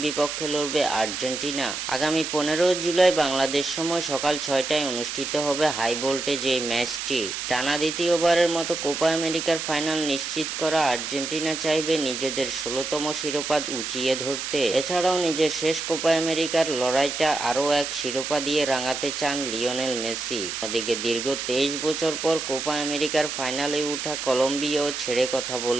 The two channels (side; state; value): right; noise; hiss, 5 dB below the sound